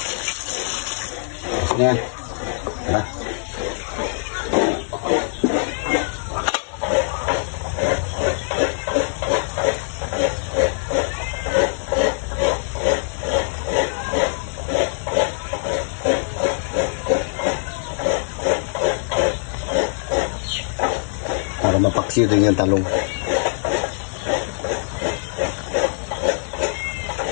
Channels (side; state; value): right; silent; 64 dB below the other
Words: Yan. Tara. Para mapaksiw din yung talong.